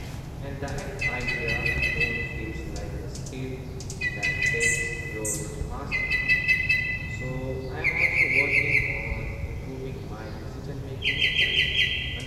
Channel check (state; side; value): identical; both; correlation 1.00